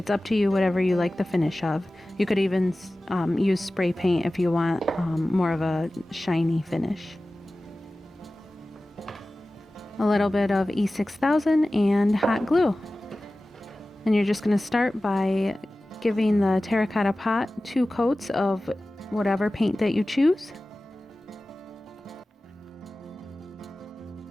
up to you, whatever you like the finish of. You could even use spray paint if you want more of a shiny finish. A little bit of E6000 and hot glue. And you're just going to start by giving the terracotta pot 2 coats of whatever paint that you choose.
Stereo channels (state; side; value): normal; both; correlation 0.96